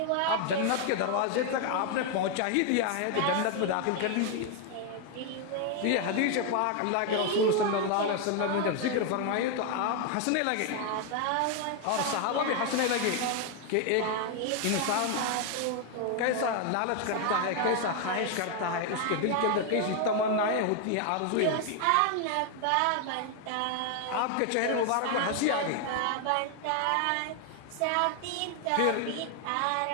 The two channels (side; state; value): both; different; correlation 0.00